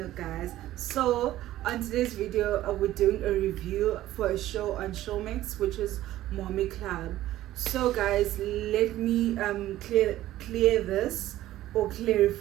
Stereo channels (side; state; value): left; quieter; 14.4 dB